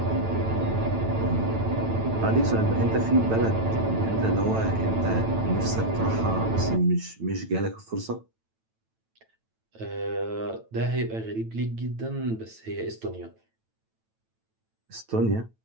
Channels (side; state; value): left; late; 9.0 ms